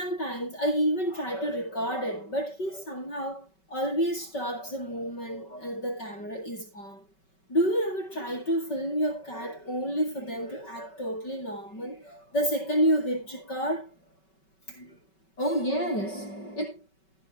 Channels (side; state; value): right; late; 5.3 ms